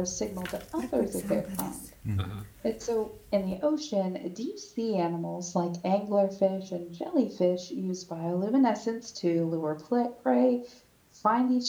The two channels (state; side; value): identical; both; correlation 1.00